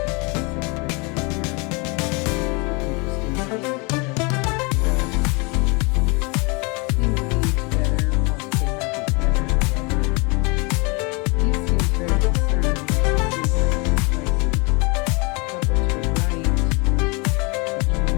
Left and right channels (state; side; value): quieter; right; 29.7 dB